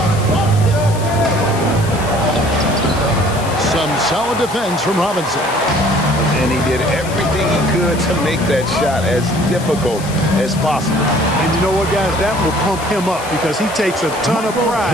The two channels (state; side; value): noise; left; hiss, 14 dB below the sound